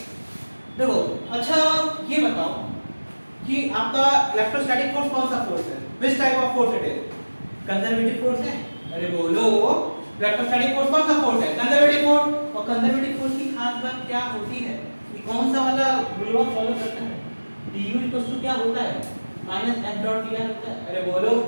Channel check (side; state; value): both; inverted; correlation -1.00